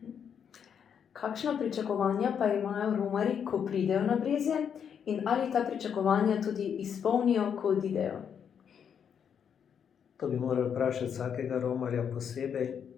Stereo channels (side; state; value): right; quieter; 7.8 dB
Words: Kakšna pričakovanja pa imajo romarji, ko pridejo na Brezje, in ali ta pričakovanja tudi izpolnijo, ko odidejo? To bi morali vprašati vsakega romarja posebej,